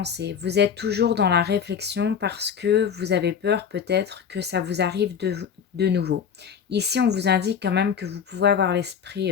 vous êtes toujours dans la réflexion parce que vous avez peur peut-être que ça vous arrive de nouveau. Ici, on vous indique quand même que vous pouvez avoir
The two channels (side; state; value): right; quieter; 7.4 dB